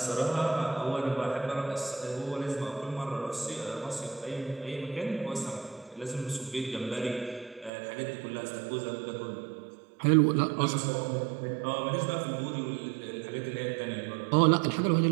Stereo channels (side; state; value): left; drops out; at 7.7 s